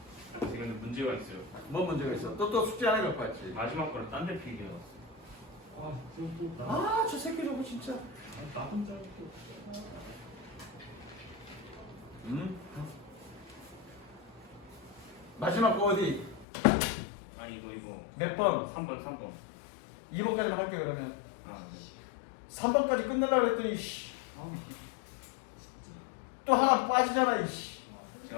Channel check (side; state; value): right; drops out; at 16.4 s